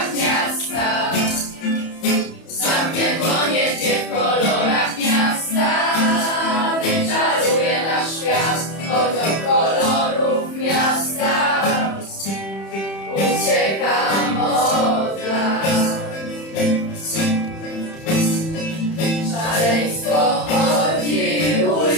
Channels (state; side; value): late; right; 31 ms